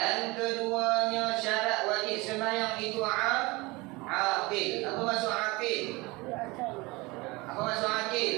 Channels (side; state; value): left; quieter; 23.5 dB